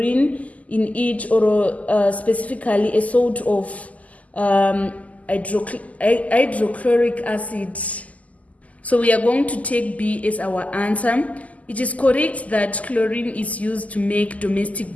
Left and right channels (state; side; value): late; right; 0.073 ms